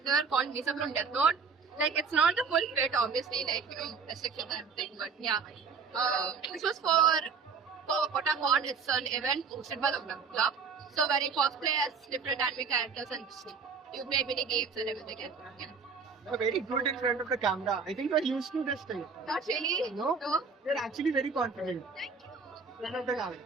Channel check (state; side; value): quieter; left; 5.2 dB